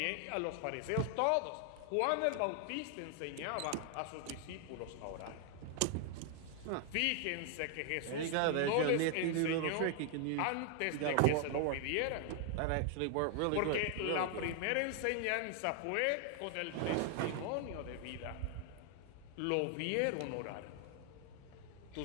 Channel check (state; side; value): different; both; correlation 0.00